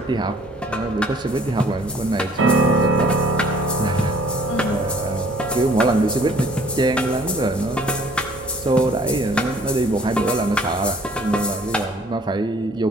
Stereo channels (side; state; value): both; normal; correlation 0.57